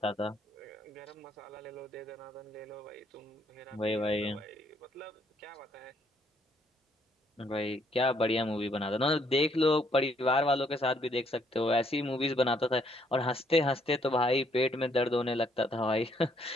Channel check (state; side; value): normal; both; correlation 0.69